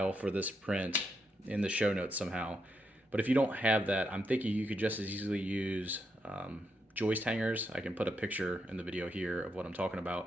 for this print in the show notes somehow. But if you don't have that, I'm thinking you could just as easily use joist hangers. I can put a picture in the video here of what I'm talking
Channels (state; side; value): normal; both; correlation 0.82